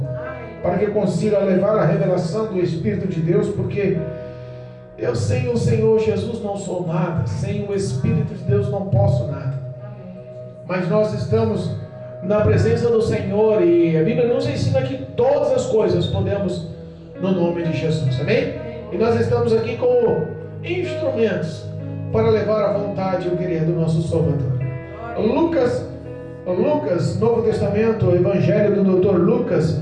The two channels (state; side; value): identical; both; correlation 1.00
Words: para que eu consiga levar a revelação do Espírito de Deus, porque eu sem o Senhor Jesus não sou nada, sem o Espírito de Deus não posso nada. Mas nós estamos na presença do Senhor e a Bíblia nos ensina que todas as coisas podemos no nome de Jesus, amém? E nós estamos aqui como instrumentos para levar a vontade e o querer do nosso Salvador. Lucas, Novo Testamento, Evangelho do Dr. Lucas,